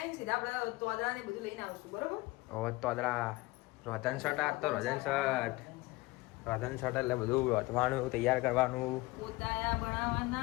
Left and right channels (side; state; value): right; quieter; 21.5 dB